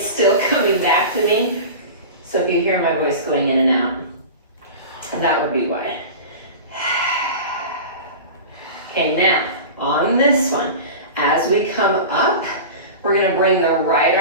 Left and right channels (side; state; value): both; inverted; correlation -0.31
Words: still coming back to me. So if you hear my voice going in and out, that would be why. Okay, now on this one, as we come up, we're gonna bring the right